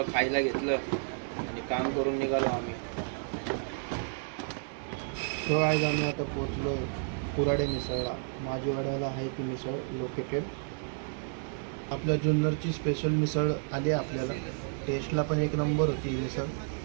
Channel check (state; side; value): silent; left; digital silence